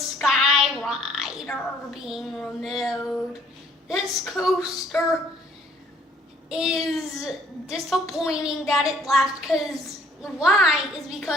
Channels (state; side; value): normal; both; correlation 0.60